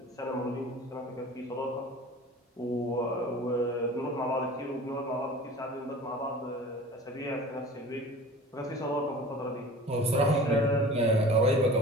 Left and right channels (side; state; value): both; normal; correlation 0.41